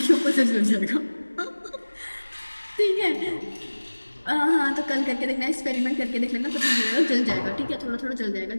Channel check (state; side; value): inverted; both; correlation -1.00